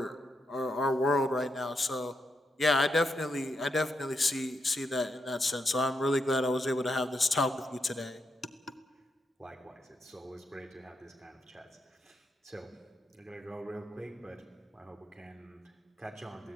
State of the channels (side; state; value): both; normal; correlation 0.82